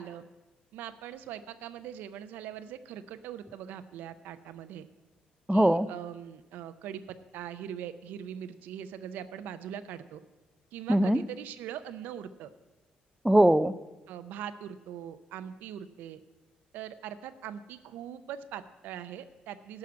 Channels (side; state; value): both; normal; correlation 0.92